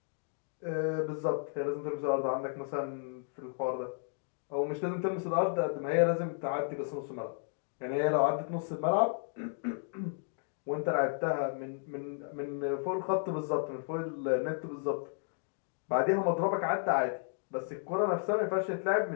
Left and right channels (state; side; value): silent; right; 55 dB below the other